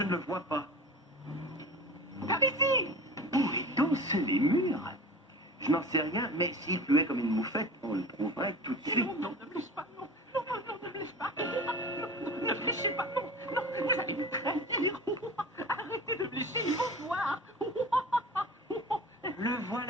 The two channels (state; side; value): normal; both; correlation 0.36